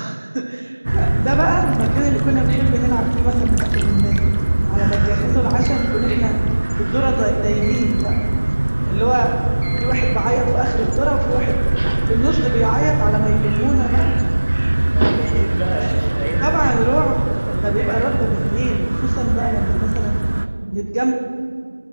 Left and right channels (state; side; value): inverted; both; correlation -1.00